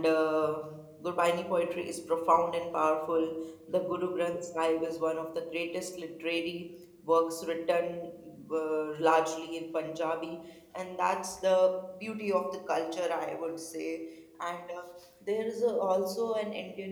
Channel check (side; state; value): both; identical; correlation 1.00